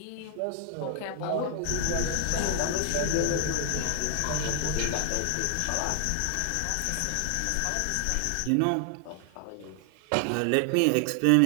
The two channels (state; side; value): different; both; correlation 0.00